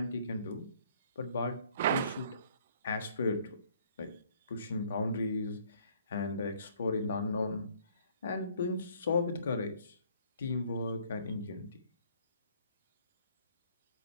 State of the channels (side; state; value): both; inverted; correlation -0.60